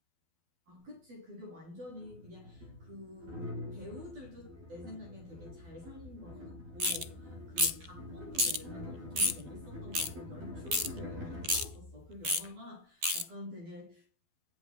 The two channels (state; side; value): late; left; 12 ms